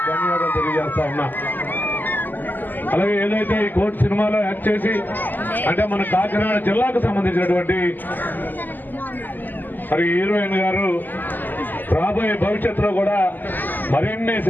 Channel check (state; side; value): late; right; 0.088 ms